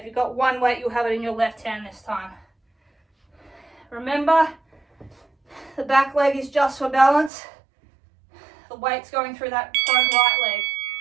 you've got one weight, you'll have it in your left hand this time. Remember, the back leg is just for balance. The weight's going through that front right leg.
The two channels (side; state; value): left; drops out; at 7.3 s